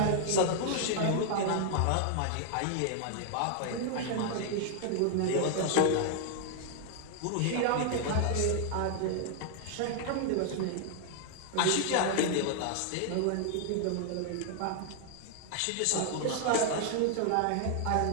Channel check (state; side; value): different; both; correlation 0.00